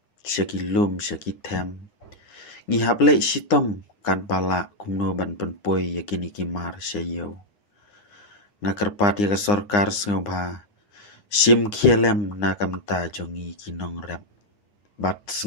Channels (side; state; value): right; late; 9.8 ms